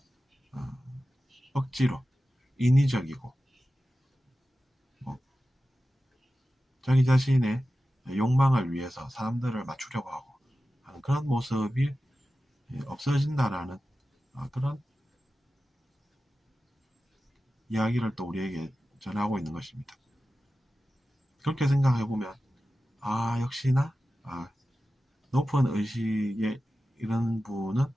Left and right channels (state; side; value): normal; both; correlation 0.94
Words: 억지로 인위적이고 자기 자신의 욕망을 위해서 사람들을 맞추려고 하고 하는 그런 모습이 없어진다라는 그런 이야기를 또 우리에게 전하고 있는 것입니다. 그렇게 생각해보면 역시나 높은 의식의 이런 분은